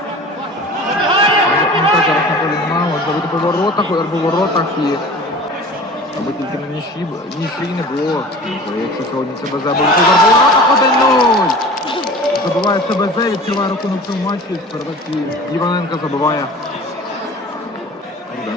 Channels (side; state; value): both; normal; correlation 0.41